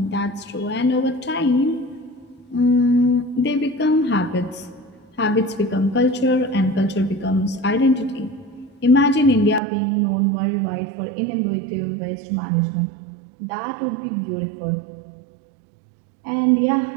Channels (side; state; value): left; drops out; at 9.6 s